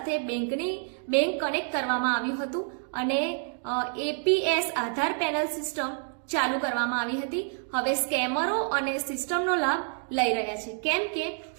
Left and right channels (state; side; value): silent; left; 56 dB below the other